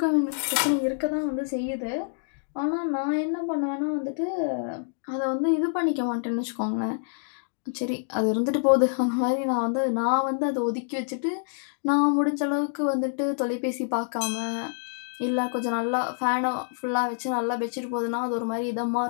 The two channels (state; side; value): silent; right; digital silence